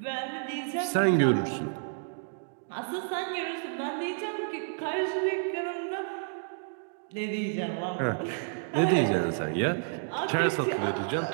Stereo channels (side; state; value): left; silent; digital silence